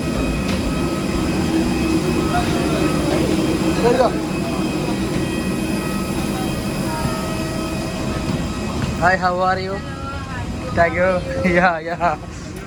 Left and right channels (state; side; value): identical; both; correlation 1.00